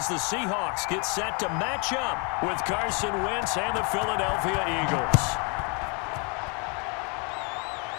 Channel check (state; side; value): quieter; right; 33.8 dB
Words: the Seahawks get set to match up with Carson Wentz and the Philadelphia Eagles.